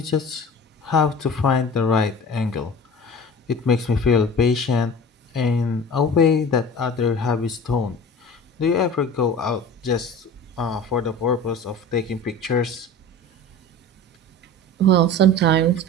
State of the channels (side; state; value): both; normal; correlation 0.38